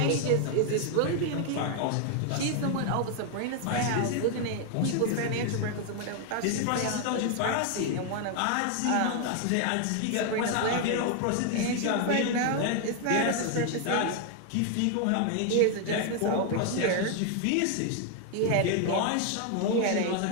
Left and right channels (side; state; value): both; different; correlation 0.00